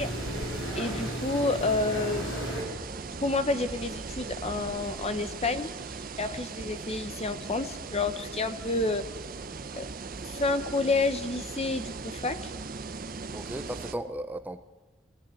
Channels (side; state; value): both; normal; correlation 0.36